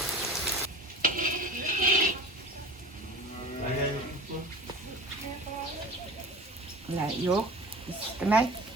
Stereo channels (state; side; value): normal; both; correlation 0.37